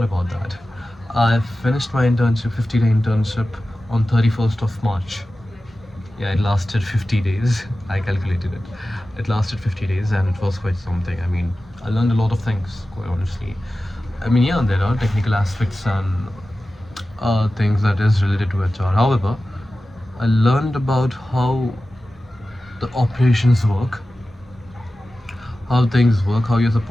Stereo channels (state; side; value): normal; both; correlation 0.95